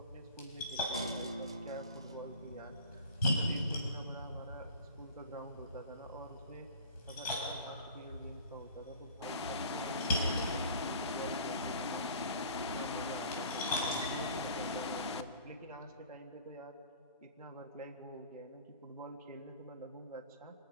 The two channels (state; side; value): inverted; both; correlation -0.45